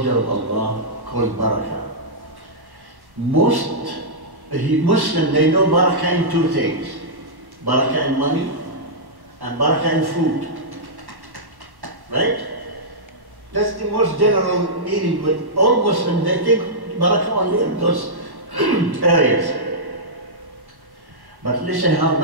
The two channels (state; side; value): late; left; 1.1 ms